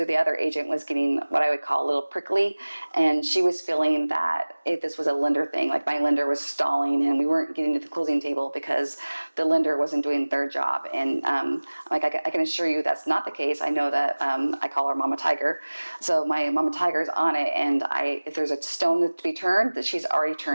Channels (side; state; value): both; inverted; correlation -1.00